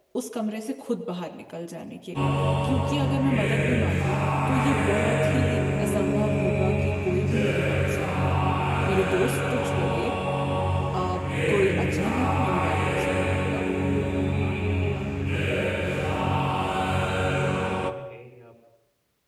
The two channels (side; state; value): both; identical; correlation 1.00